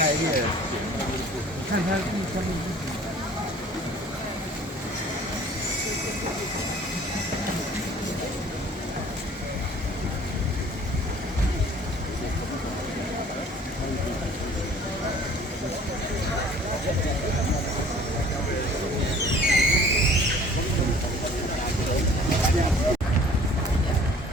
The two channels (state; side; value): normal; both; correlation 0.51